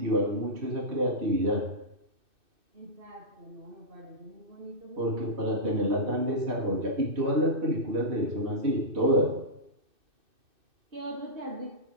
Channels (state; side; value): late; left; 2.6 ms